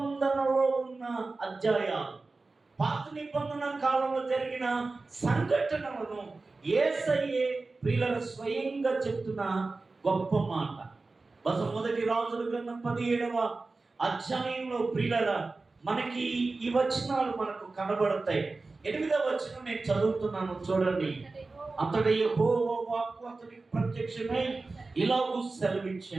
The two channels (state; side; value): quieter; left; 3.6 dB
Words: ఉన్న అధ్యాయాలు, పాత నిబంధన కాలంలో జరిగిన సంఘటనలను యేసయ్యే ప్రియుల స్వయంగా చెప్తున్న గొప్ప మాట. బహుశా మొదటి రాజుల గ్రంథం 17వ అధ్యాయంలో ప్రియుల మనకి ఈ వచనాలు మనకు కనబడతాయి. 8వ వచనం నేను చదువుతున్నాను, చూడండి. అంతట యెహోవా వాక్కు అతనికి ప్రత్యక్షమై ఇలాగూ